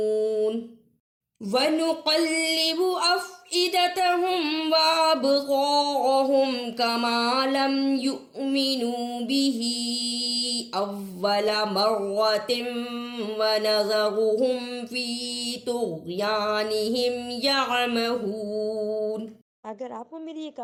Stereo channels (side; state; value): both; identical; correlation 1.00